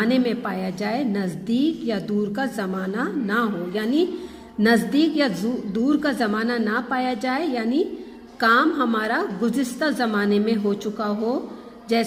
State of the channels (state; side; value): identical; both; correlation 1.00